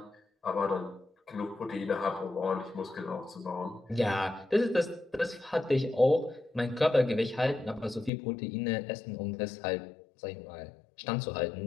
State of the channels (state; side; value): drops out; right; at 8.1 s